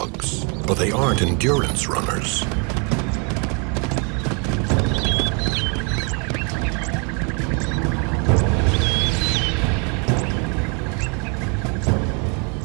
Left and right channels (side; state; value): left; quieter; 35.2 dB